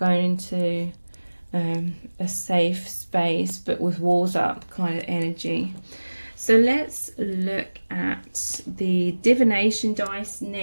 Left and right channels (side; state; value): both; inverted; correlation -1.00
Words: into a safe space but with walls up kind of energy. So let's look at the divination dice